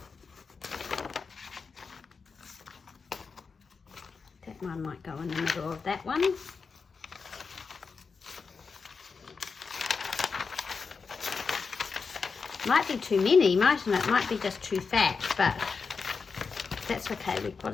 That one might go in the middle of that one. Might be too many, mightn't it? Might be just too fat, but that's okay. We've got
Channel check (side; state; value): right; quieter; 5.1 dB